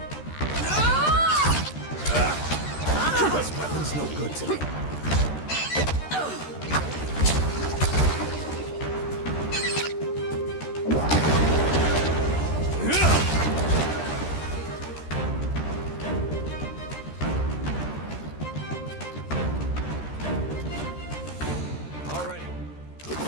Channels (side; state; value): right; late; 13 ms